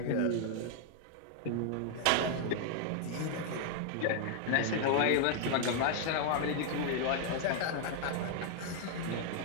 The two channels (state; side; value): different; both; correlation 0.00